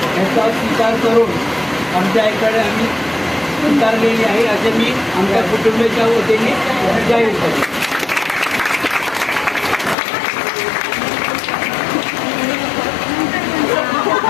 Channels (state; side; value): drops out; right; at 10.0 s